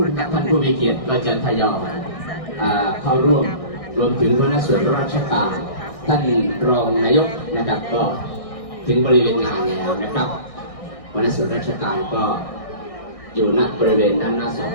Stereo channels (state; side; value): late; right; 1.6 ms